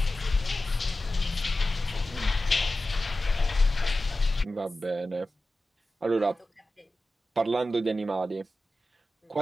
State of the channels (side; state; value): both; normal; correlation 0.94